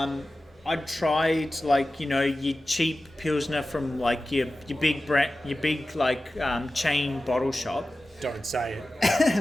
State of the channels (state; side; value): normal; both; correlation 0.95